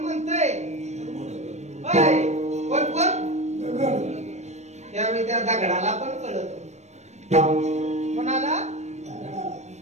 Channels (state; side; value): late; left; 0.33 ms